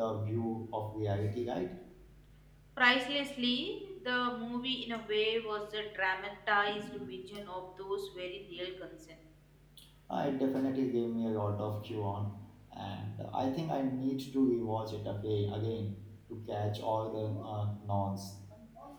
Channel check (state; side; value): identical; both; correlation 1.00